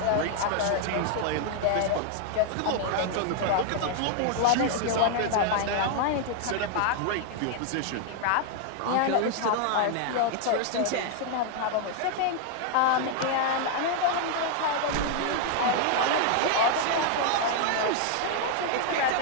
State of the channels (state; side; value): different; both; correlation 0.00